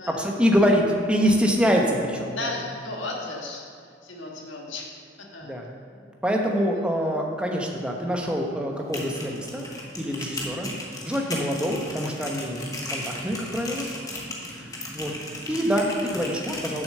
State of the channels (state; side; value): normal; both; correlation 0.63